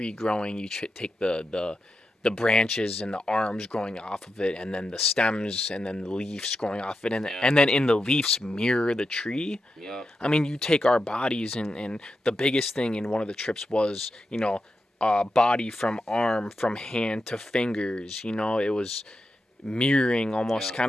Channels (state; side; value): normal; both; correlation 0.88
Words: growing, you take the branches and the arms growing off of it, and then the stems and then the leaves growing off it, and then in the leaves mirror the tree. Yeah. I mean, you take our bodies, and the biggest thing in one of the trips was body from arm, from hand to fingers. It was mirroring almost